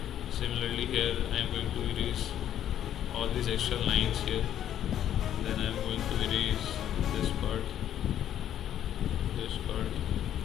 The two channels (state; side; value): quieter; right; 10.8 dB